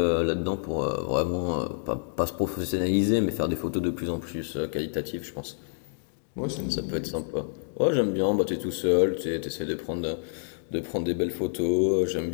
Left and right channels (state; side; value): silent; right; digital silence